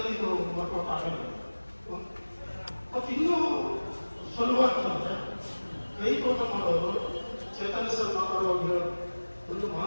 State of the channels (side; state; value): both; inverted; correlation -1.00